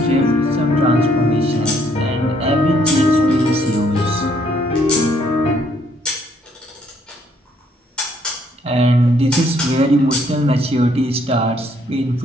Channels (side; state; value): both; normal; correlation 0.67